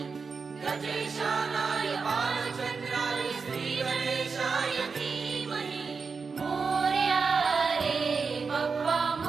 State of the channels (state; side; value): quieter; left; 5.0 dB